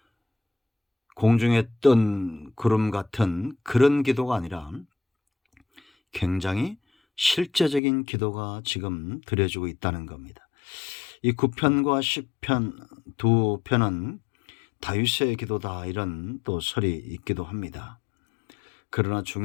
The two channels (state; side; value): drops out; right; at 7.8 s